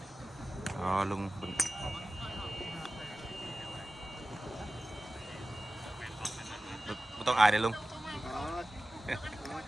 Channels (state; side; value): normal; both; correlation 0.95